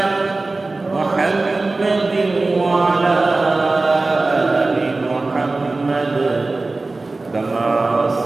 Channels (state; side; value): quieter; left; 3.3 dB